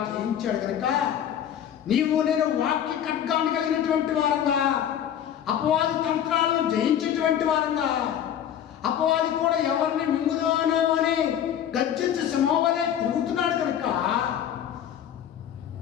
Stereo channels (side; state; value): right; quieter; 9.8 dB